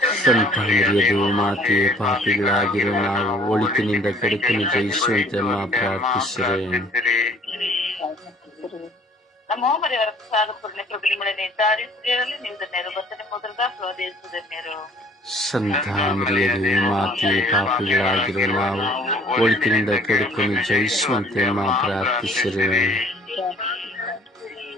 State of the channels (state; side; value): normal; both; correlation 0.55